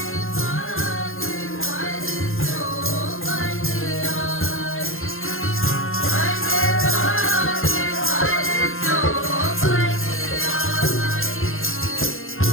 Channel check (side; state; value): right; late; 0.60 ms